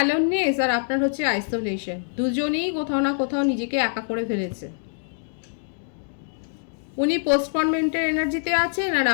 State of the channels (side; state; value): right; silent; digital silence